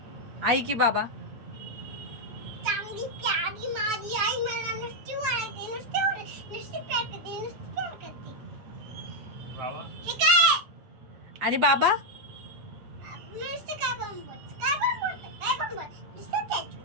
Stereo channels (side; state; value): left; late; 8.6 ms